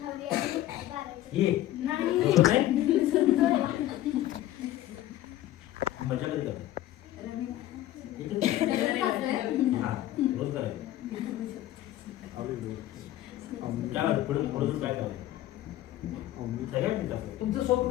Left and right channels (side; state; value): right; quieter; 14.1 dB